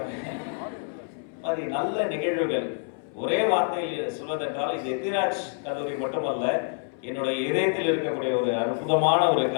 மாதிரி நல்ல நிகழ்வுகள். ஒரே வார்த்தையில் சொல்வதென்றால், இது எத்திராஜ் கல்லூரி மட்டுமல்ல, என்னுடைய இதயத்தில் இருக்கக்கூடிய ஒரு அற்புதமான ஒரு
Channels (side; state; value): right; silent; 60 dB below the other